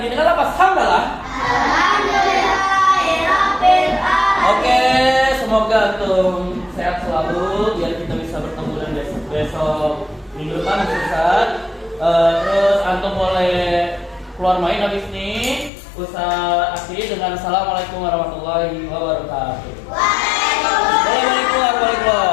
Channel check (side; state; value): right; drops out; at 15.7 s